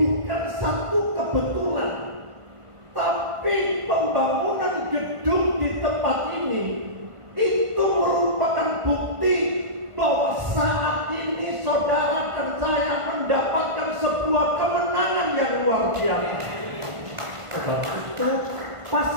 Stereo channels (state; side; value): late; left; 1.5 ms